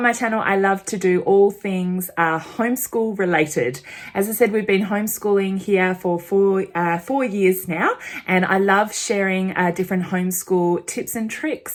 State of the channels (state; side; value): identical; both; correlation 1.00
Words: my channel, I love to do all things homeschool related. As I said, we've been homeschooling here for 4 years now, and I love sharing different homeschool tips and